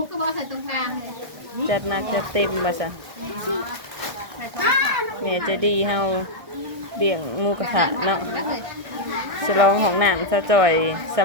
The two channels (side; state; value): left; late; 1.6 ms